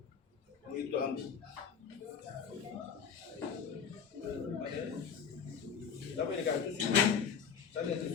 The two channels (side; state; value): right; quieter; 6.8 dB